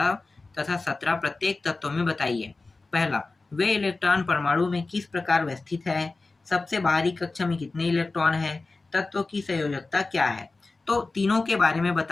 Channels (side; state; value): right; quieter; 3.5 dB